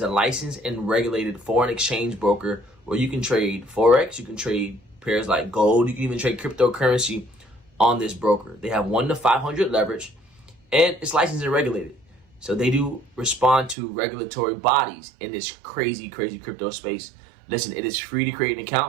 a licensed and regulated foreign exchange broker where you can trade Forex, you can trade pairs like gold, you can even trade cryptocurrency on this broker. They have 1 to 500 leverage, and it's licensed and regulated. So they do respond to regulatory bodies in this crazy crypto space. Listen, it is free to create an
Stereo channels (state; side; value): drops out; left; at 13.8 s